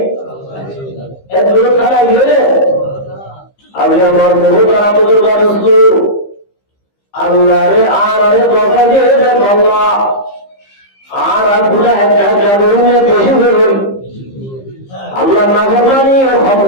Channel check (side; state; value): right; late; 15 ms